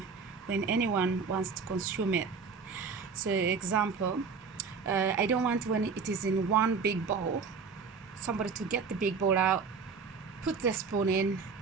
when anyone wants to consume it. So example, I don't want when it is in one big bowl, somebody to get the big bowl out, put the spoon in,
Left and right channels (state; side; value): quieter; left; 5.3 dB